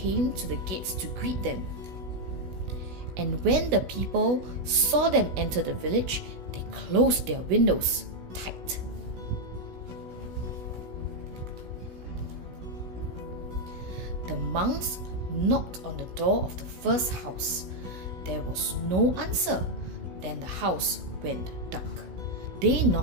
to the gates to greet them. And when the people saw them enter the village, they closed their windows tight. The monks knocked on the door of the first house. There was no answer. Then the house went dark. They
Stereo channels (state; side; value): late; left; 16 ms